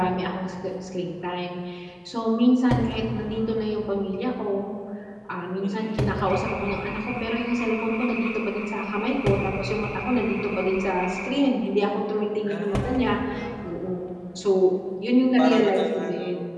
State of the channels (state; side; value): identical; both; correlation 1.00